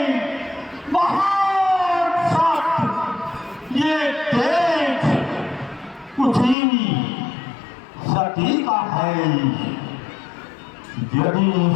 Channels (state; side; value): drops out; right; at 6.6 s